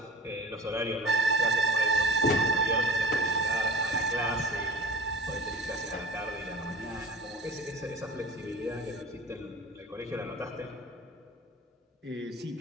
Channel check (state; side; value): normal; both; correlation 0.39